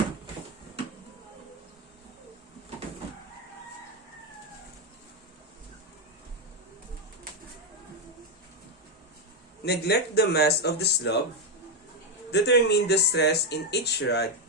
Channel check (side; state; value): both; normal; correlation 0.05